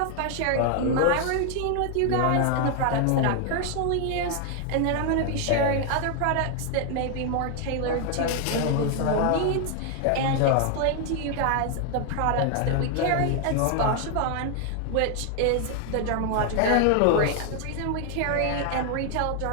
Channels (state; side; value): different; both; correlation 0.00